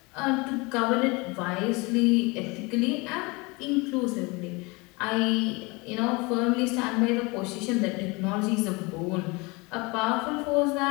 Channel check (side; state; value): right; quieter; 26.2 dB